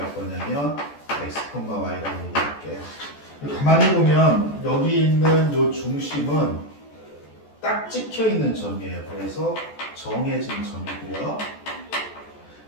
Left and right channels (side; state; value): right; late; 14 ms